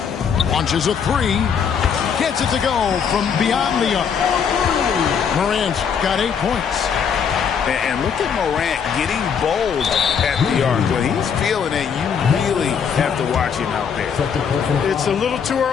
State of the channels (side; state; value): right; quieter; 7.0 dB